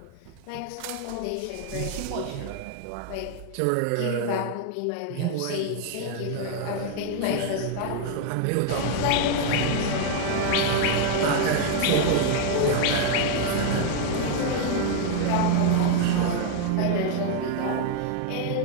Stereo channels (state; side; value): different; both; correlation 0.00